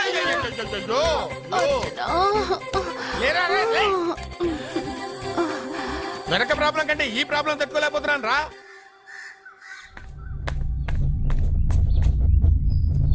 వెనక ప్రాబ్లం కంటే ఈ ప్రాబ్లం తట్టుకోలేకపోతున్నాను రా.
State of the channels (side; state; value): both; identical; correlation 1.00